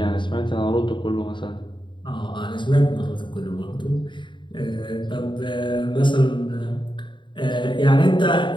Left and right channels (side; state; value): right; late; 0.23 ms